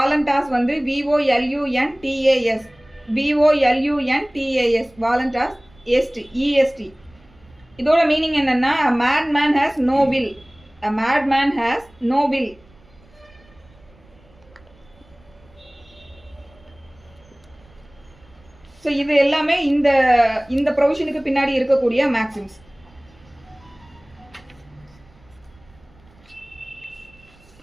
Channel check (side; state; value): right; noise; rumble, 28 dB below the sound